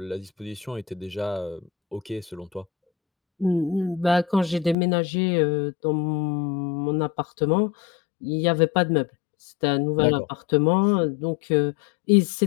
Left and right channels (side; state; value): right; drops out; at 4.8 s